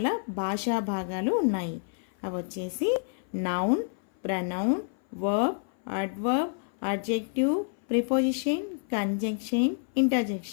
భాషా భాగాలు ఉన్నాయి. అవి వచ్చేసి noun, pronoun, verb, adverb, adjective, preposition, conjunction,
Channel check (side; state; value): right; silent; 56 dB below the other